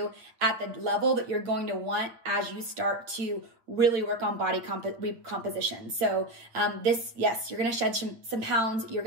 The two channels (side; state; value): left; late; 8.7 ms